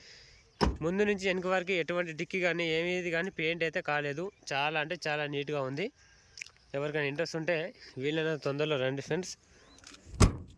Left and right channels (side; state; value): both; identical; correlation 1.00